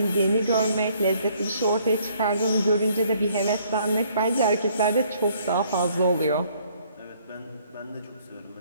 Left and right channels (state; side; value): inverted; both; correlation -0.63